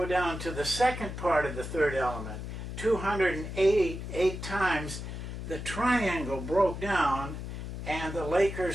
down to the second part of the third element. 288 times the triangle broke down, and the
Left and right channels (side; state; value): left; noise; hum, 7 dB below the sound